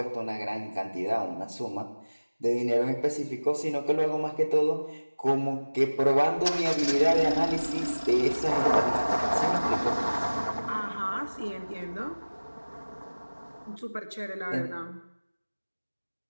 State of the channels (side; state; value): both; inverted; correlation -1.00